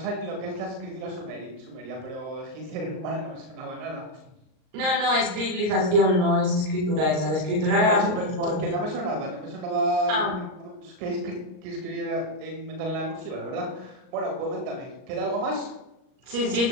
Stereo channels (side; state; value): left; late; 38 ms